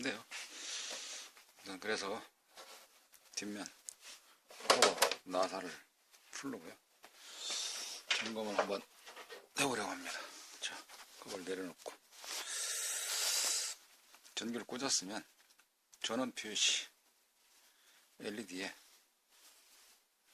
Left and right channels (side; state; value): both; identical; correlation 1.00